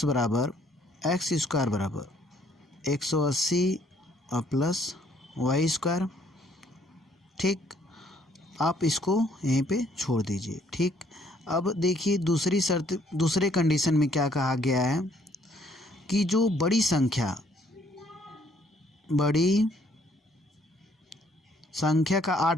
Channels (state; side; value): normal; both; correlation 0.65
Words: बराबर 180 और प्लस वाई स्क्वायर, ठीक, आप इसको यहीं पे छोड़ दीजिए। ठीक, अब देखिए दूसरे कंडीशन में क्या कहा गया है कि जो बड़ी संख्या का